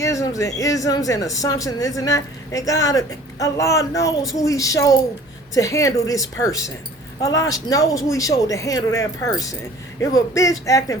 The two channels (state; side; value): normal; both; correlation 0.49